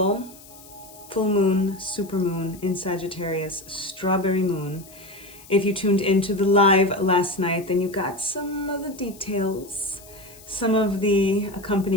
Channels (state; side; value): noise; left; hiss, 21 dB below the sound